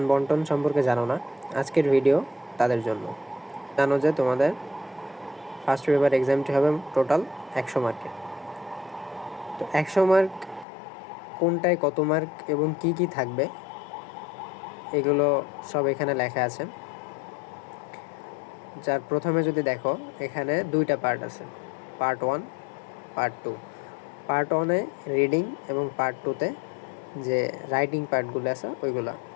বন্টন সম্পর্কে জানো না, আজকের ভিডিও তাদের জন্য। জানো যে তোমাদের ফার্স্ট পেপার এক্সামটি হবে টোটাল 100 মার্কের। তো 100 মার্ক কোনটায় কত মার্ক এবং কি কি থাকবে এগুলো সব এখানে লেখা আছে। যার প্রথমে যদি দেখো, এখানে দুইটা পার্ট আছে, পার্ট 1, পার্ট 2। পার্ট 1-এ রিডিং এবং পার্ট 2-তে যে রাইটিং পার্টগুলো আছে ওইগুলো।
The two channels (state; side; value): drops out; right; at 10.7 s